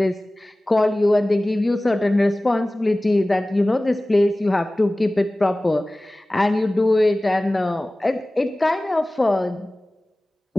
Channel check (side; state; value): both; normal; correlation 0.98